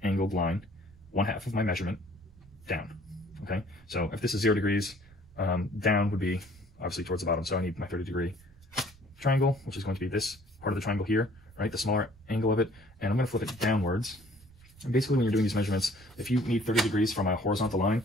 angled line, 1/2 of my measurement, down, okay? So if this is 0 degrees, down would be obviously towards the bottom, so I need my 30-degree triangle, which is going to be this part of the triangle here, right, the smaller angle of it, and I'm gonna flip it downwards. And basically when you're doing these measurements, if you need 30 degrees from a horizontal line,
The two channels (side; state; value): right; noise; rumble, 26 dB below the sound